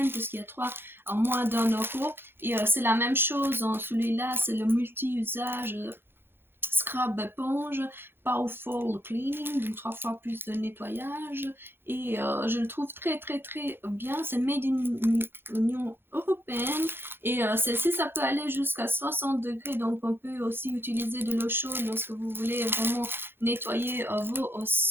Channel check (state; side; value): late; left; 0.10 ms